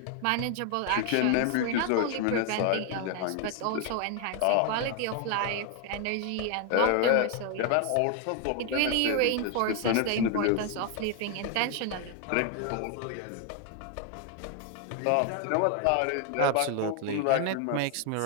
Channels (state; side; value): different; both; correlation 0.01